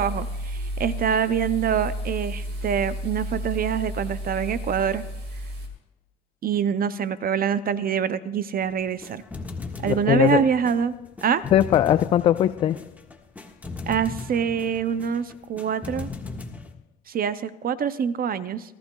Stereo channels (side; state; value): both; normal; correlation 0.30